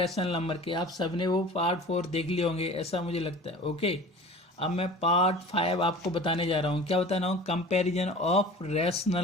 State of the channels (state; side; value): normal; both; correlation 0.41